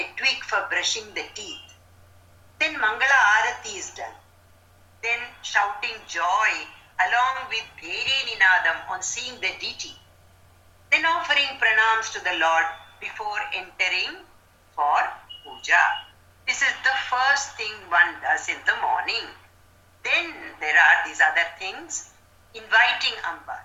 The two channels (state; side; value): identical; both; correlation 1.00